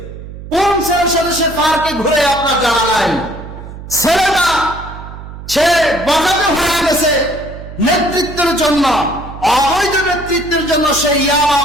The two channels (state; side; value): noise; right; hum, 13 dB below the sound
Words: কোন ছেলের সাথে সে পার্কে ঘুরে আপনার জানা নাই। ছেলেটা সে বগাতে হয়ে গেছে নেতৃত্বের জন্য, অবৈধ নেতৃত্বের জন্য। সে